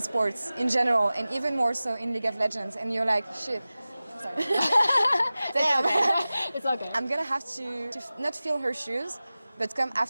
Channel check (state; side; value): inverted; both; correlation -0.97